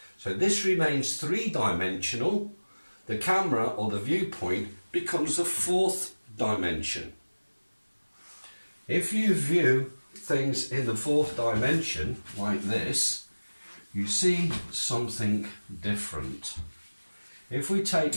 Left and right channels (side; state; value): both; inverted; correlation -1.00